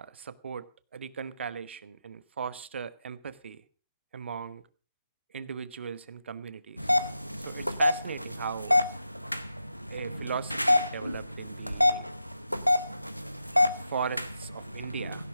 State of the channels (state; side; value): inverted; both; correlation -0.88